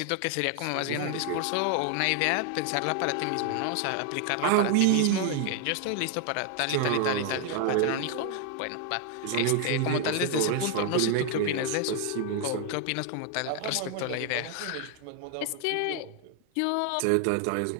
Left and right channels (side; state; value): both; different; correlation 0.00